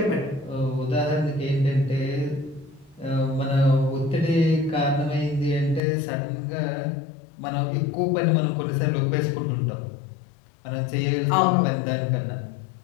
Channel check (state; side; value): drops out; right; at 5.8 s